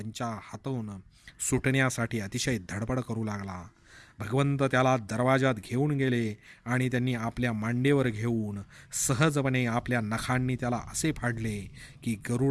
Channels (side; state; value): both; identical; correlation 1.00